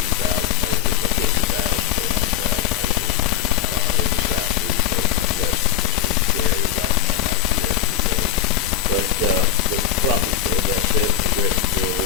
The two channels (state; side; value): quieter; right; 9.4 dB